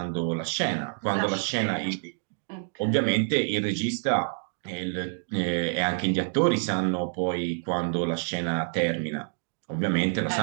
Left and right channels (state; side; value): silent; left; digital silence